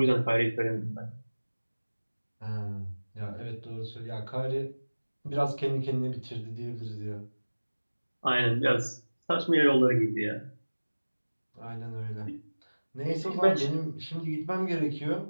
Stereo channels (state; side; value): inverted; both; correlation -1.00